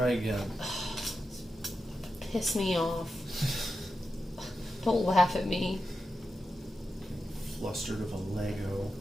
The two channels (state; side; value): normal; both; correlation 0.90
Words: again. Piss me off. Don't laugh at me. Flustered of a Lego.